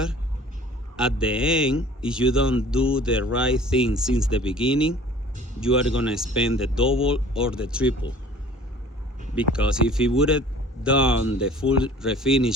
at the end, if you don't do the right thing since the beginning, you are gonna spend the double or the triple. Because if he would have done the full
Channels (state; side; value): normal; both; correlation 0.48